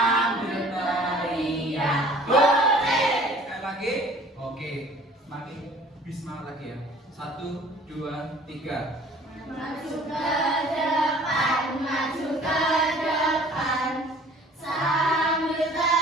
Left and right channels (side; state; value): both; normal; correlation 0.51